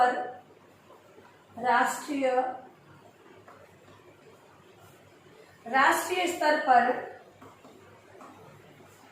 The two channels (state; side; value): identical; both; correlation 1.00